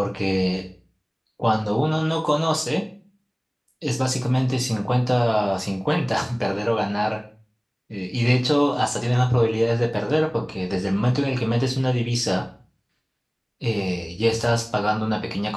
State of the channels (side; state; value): both; identical; correlation 1.00